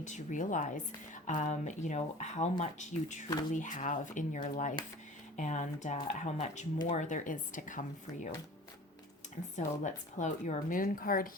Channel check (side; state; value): both; normal; correlation 0.42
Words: to realize, how much you truly have in your life and how much more there is to come for you. And so let's pull out your moon card